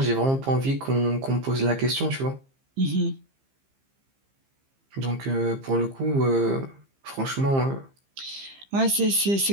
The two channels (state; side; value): late; left; 15 ms